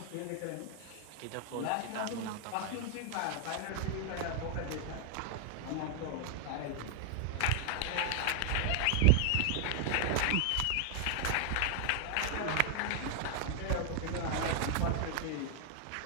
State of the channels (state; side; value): different; both; correlation 0.00